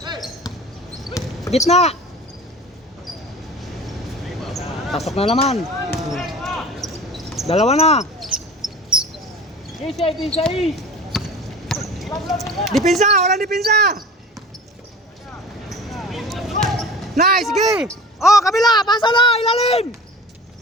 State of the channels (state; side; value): normal; both; correlation 0.39